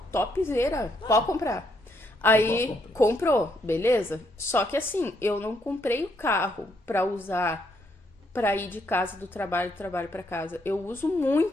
topzera. Pode comprar. Aí comprou, beleza? Só que assim, eu não comprei o carro pra usar pra ir de casa do trabalho pra casa. Eu uso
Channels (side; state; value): both; normal; correlation 0.74